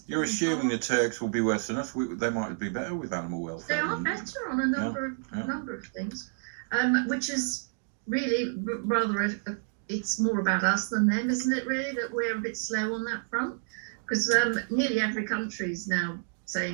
You're in assuming the parks. Turks will be worse than us. They might be better with animal They welfare. are better on a number of things, which is really rather it's more about us than them, isn't it? Really, that we're a bit slow on that front, because nearly every country is now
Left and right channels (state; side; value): silent; left; digital silence